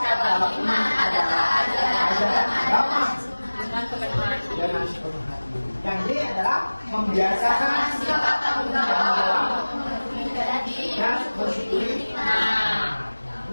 iman adalah ajaran agama dengan kepenuhan dengan sepenuh hati. Yang D adalah membiasakan sikap tanggung jawab, memenuhi janji, dan bersyukuri. Nah,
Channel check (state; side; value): inverted; both; correlation -1.00